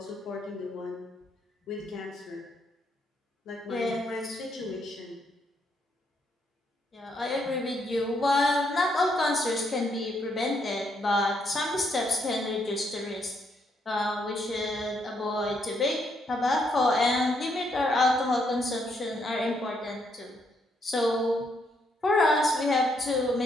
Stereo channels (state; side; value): normal; both; correlation 0.75